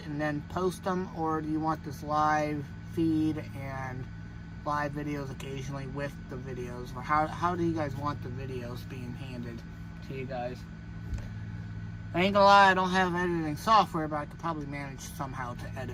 and then post them? Or do you want this live feed and live videos occasionally with the videos? Or how do you guys want the videos being handed to to you guys. I ain't gonna lie, I don't have editing software, but I could probably manage somehow to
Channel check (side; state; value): both; identical; correlation 1.00